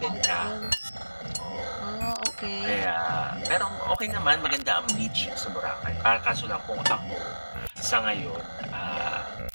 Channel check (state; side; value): inverted; both; correlation -1.00